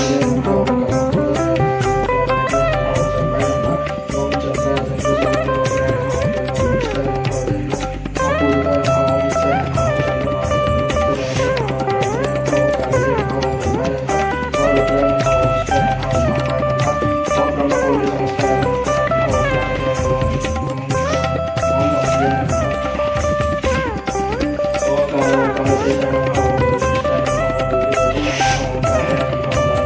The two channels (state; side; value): identical; both; correlation 1.00